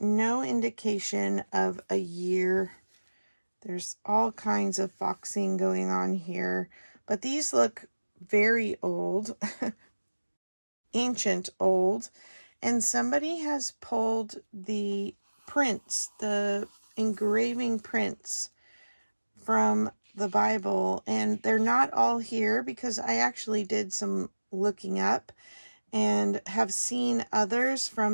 indication of a year. There's all kinds of foxing going on here, but these look very old, ancient old, and somebody has pulled the prints, the engraving prints from the Bible, and they're not all here because I actually did some looking up and have seen others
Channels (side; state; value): both; inverted; correlation -1.00